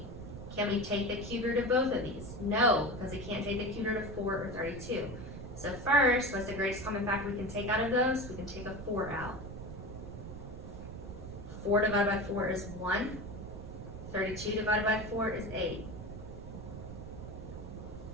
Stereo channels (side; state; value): right; noise; rumble, 10 dB below the sound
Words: Can we take the cube root of both of these? No, because we can't take the cube root of 4 or 32. So first, what's the greatest common factor we can take out of those? We can take a 4 out. 4 divided by 4 is 1. 32 divided by 4 is 8.